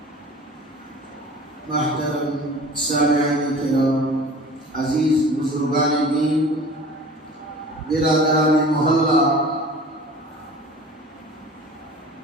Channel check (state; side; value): normal; both; correlation 0.42